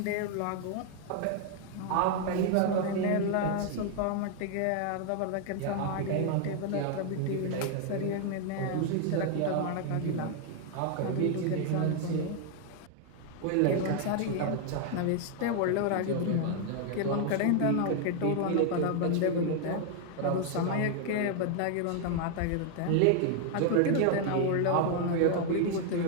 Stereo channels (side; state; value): both; different; correlation 0.00